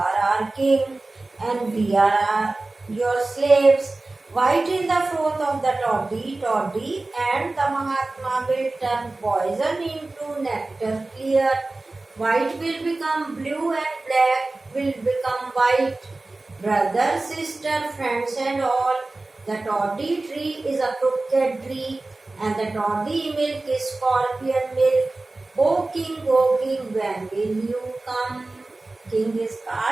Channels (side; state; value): left; quieter; 3.1 dB